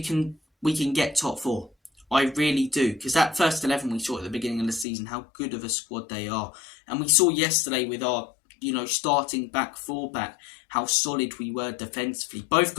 can get top 4. I really do. Because that first 11 we saw at the beginning of the season, how good of a squad they are. And we saw yesterday with our starting back 4 back, how solid we were defensively. Both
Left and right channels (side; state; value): right; drops out; at 4.9 s